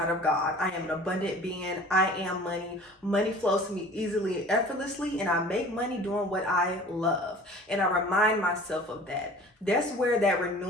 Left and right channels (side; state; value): both; normal; correlation 0.44